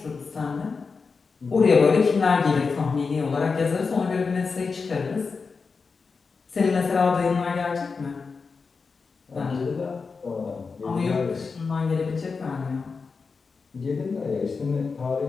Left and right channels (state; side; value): quieter; right; 4.8 dB